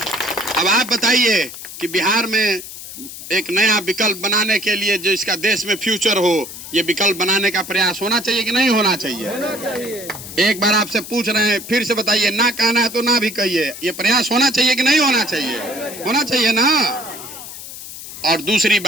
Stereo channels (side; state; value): left; noise; hiss, 12 dB below the sound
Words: अब आप बताइए कि बिहार में एक नया विकल्प बनाने के लिए जो इसका देश में फ्यूचर हो, ये विकल्प बनाने का प्रयास होना चाहिए कि नहीं होना चाहिए? एक बार आपसे पूछ रहे हैं, फिर से बताइए। ना कहना है तो ना भी कहिए। ये प्रयास होना चाहिए कि नहीं होना चाहिए? होना चाहिए ना। और दूसरी